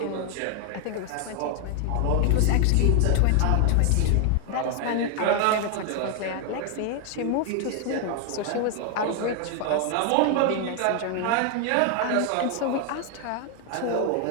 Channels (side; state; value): both; different; correlation 0.00